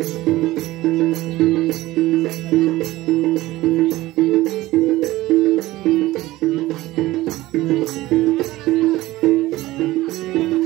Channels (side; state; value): left; quieter; 17.6 dB